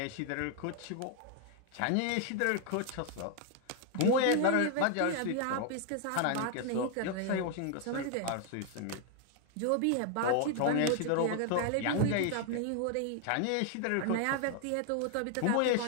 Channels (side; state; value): both; different; correlation 0.00